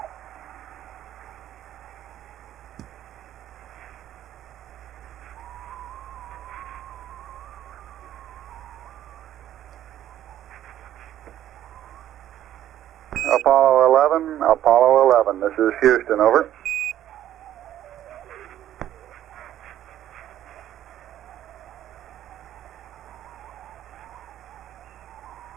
Apollo 11, this is Houston, over.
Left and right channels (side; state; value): left; quieter; 12.0 dB